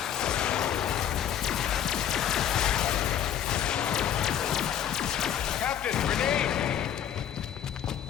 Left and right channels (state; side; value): quieter; right; 9.7 dB